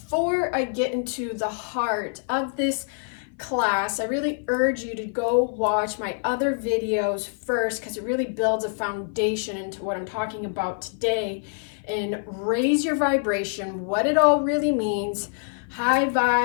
I get into the heart of this class, I really urge you to go watch my other videos first because it really builds a foundation into what I'm talking about today and raise your vibration, what it all really means, high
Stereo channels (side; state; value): right; silent; 55 dB below the other